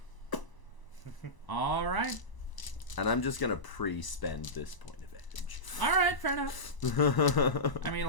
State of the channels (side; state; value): right; late; 1.0 ms